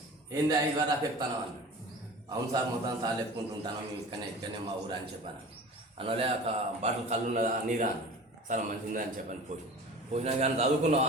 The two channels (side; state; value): both; normal; correlation 0.39